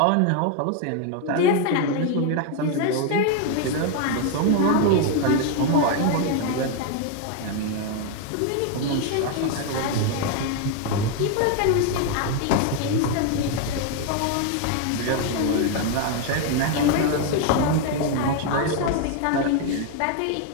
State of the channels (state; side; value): different; both; correlation 0.01